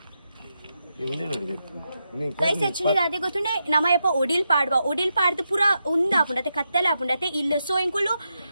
ಗೈಸ್ ಆಕ್ಚುಲಿ ಅದೇ ಗೊತ್ತುಂಡೆ ನಮಯಪ್ಪ ಒಡಿಲ್ ಪಾಡ್ದು ಪೂರ ಉಂದಾಪುಂಡತೆ ಕತ್ತಲೆ ಆಪುಂಡತೆ ಇಲ್ಲ ಸೊ ಎಂಕುಲು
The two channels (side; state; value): both; inverted; correlation -0.85